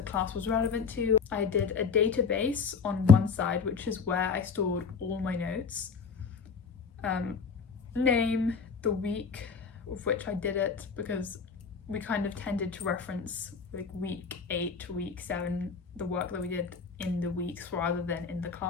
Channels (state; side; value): quieter; right; 5.6 dB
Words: class was relevant to. I did a database on one side, which is where I stored all my notes. Name, the week of which I did it, because we kind of tended to reference like week 8 to week 7, the work that we did in the weeks rather than in the